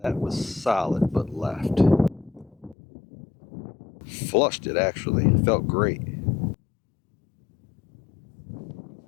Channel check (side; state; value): right; drops out; at 2.8 s